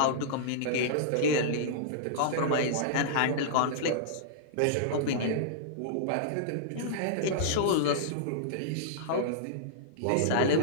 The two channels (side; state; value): both; different; correlation -0.02